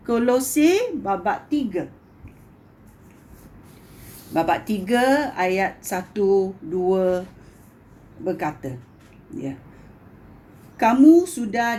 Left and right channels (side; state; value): both; identical; correlation 1.00